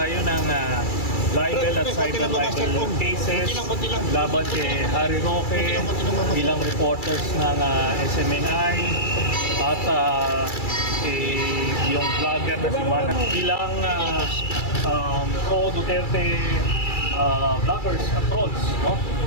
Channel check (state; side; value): late; right; 2.3 ms